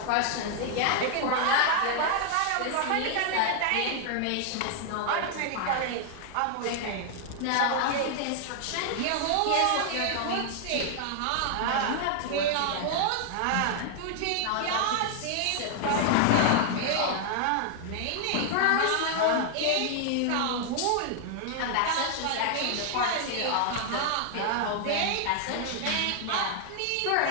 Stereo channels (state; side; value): different; both; correlation 0.00